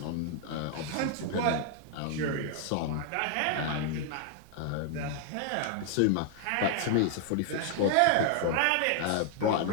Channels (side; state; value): both; different; correlation 0.00